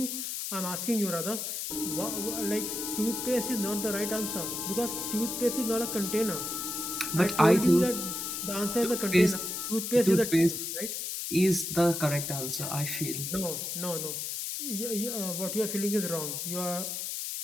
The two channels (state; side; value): noise; left; hiss, 4 dB below the sound